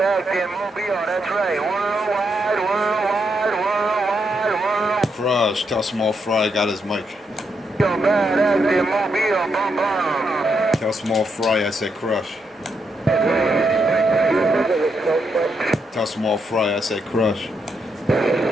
acting, mobile. That's right, worldwide. Crush, tell Small Fry got his mic. Yo, bad acting, mobile, bum bum. Tell Small Fry I said crush. Tell Small Fry I said crush. I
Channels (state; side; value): normal; both; correlation 0.80